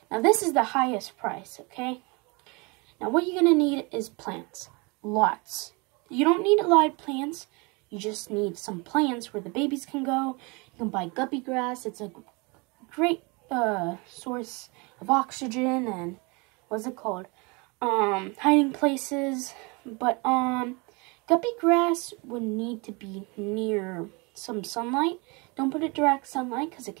Now this is the highest price, okay? Now what you're gonna need is plants, lots. You don't need live plants. You just need some plants where the babies can go. You can buy guppy grass. It's a great source of oxygen and what's it called? Hiding places. But guppy grass would need to be near some sunlight. Don't put it direct sunlight because it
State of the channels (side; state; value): left; quieter; 28.6 dB